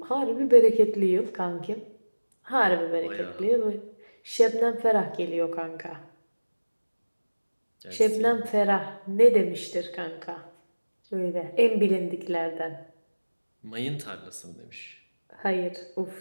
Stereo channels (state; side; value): inverted; both; correlation -1.00